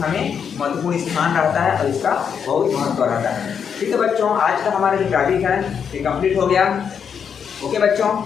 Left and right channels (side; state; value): right; quieter; 7.2 dB